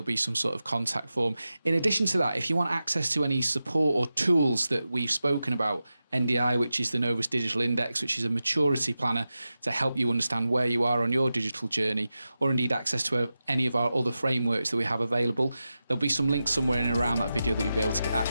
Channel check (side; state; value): both; inverted; correlation -0.92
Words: be some sort of contact form. In addition to that, if you want access to any support or tools that we've spoken about, NDI, which is the Novus Digital Index, which is a maturity planner to help you understand where you are on your digital journey, or indeed access to any of our other frameworks that we have available, there'll be some links somewhere in and around that video that you'll be able to get